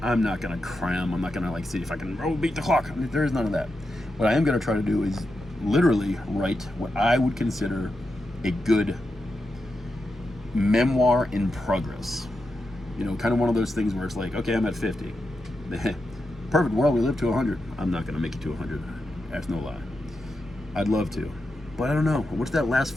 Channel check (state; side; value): normal; both; correlation 0.87